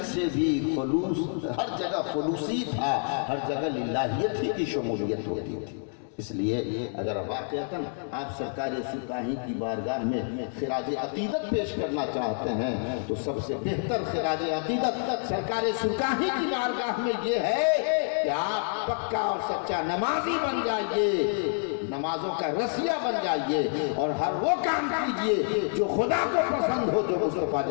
سے بھی خلوص، ہر جگہ خلوصی تھا، ہر جگہ للہیت ہی کی شمولیت ہوتی تھی۔ اس لیے اگر واقعتاً آپ سرکار سرکاہی کی بارگاہ میں خراج عقیدت پیش کرنا چاہتے ہیں تو سب سے بہتر خراج عقیدت سرکار سرکاہی کی بارگاہ میں یہ ہے کہ آپ پکا اور سچا نمازی بن جائیے، نمازوں کا رسیہ بن جائیے اور ہر وہ کام کیجئے جو خدا کو پسند ہو، جو مصطفیٰ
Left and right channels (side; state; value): right; silent; digital silence